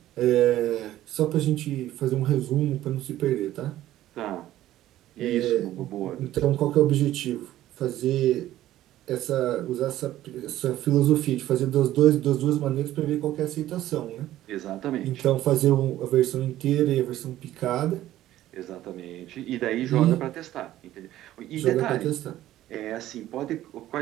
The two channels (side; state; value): left; quieter; 13.9 dB